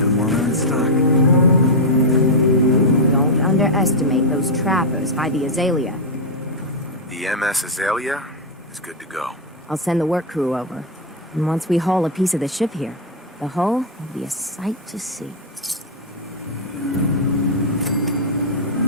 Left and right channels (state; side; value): normal; both; correlation -0.02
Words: them while they're in stock. Don't underestimate those trappers by the Azalea. The MS Azalea is good to go. I'll send the work crew over. And once we haul a piece of the ship here, the hull will be a sight to see.